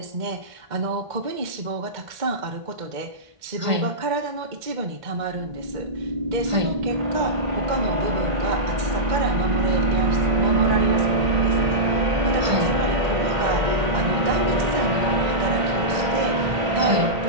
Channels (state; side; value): late; left; 1.5 ms